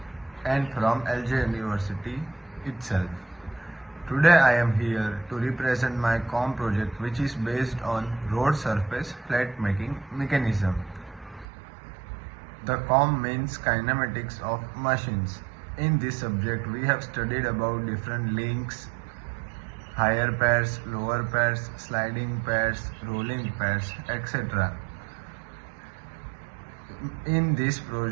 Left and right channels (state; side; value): drops out; left; at 11.5 s